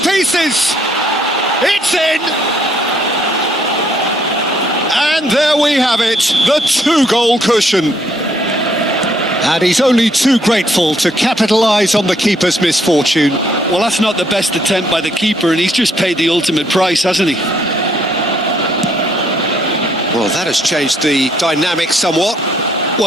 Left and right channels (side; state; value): both; normal; correlation 0.68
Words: It's in! And there we have it, the two-goal cushion. And he's only too grateful to capitalise on the keeper's misfortune. Well, that's not the best attempt by the keeper, and he's just paid the ultimate price, hasn't he? Well, that has changed the dynamic somewhat.